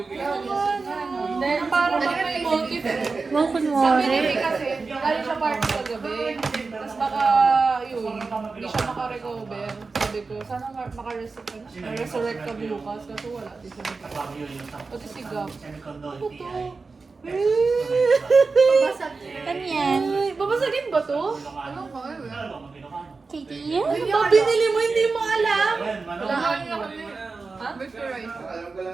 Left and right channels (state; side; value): quieter; left; 4.2 dB